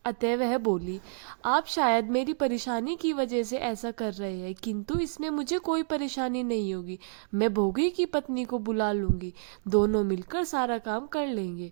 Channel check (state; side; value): silent; left; digital silence